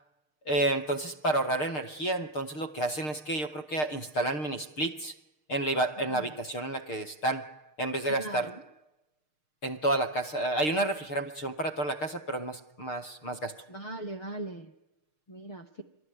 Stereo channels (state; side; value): late; right; 6.6 ms